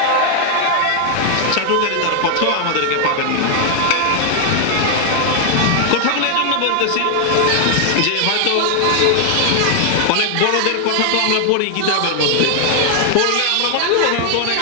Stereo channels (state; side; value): different; both; correlation 0.00